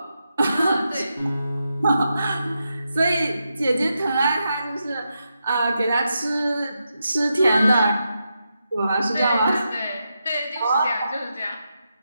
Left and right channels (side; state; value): both; inverted; correlation -0.86